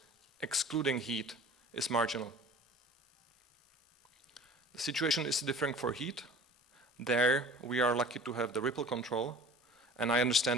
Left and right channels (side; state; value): both; normal; correlation 0.43